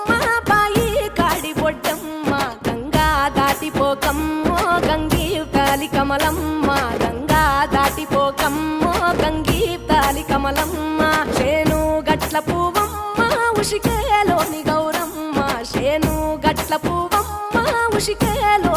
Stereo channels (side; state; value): both; identical; correlation 1.00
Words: బాయి కాడి బొడ్డమ్మ గంగా దాటిపోకమ్మో గంగీ తాలి కమలమ్మ గంగా దాటిపోకమ్మో గంగీ తాలి కమలమ్మ శేను గట్ల పువ్వమ్మ ఉషికేలోని గౌరమ్మ శేను గట్ల పువ్వమ్మ